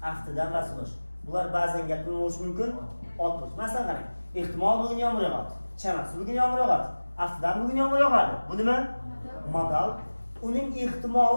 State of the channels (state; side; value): inverted; both; correlation -1.00